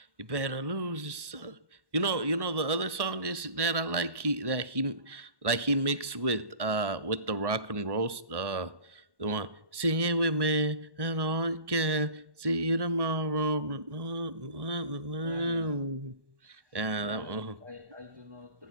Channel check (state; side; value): late; left; 1.1 ms